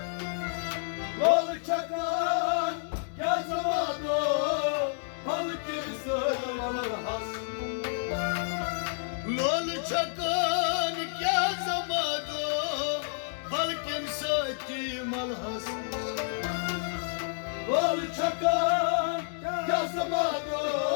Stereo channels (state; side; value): silent; right; 58 dB below the other